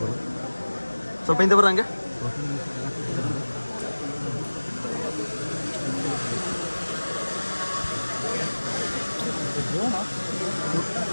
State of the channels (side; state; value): both; inverted; correlation -1.00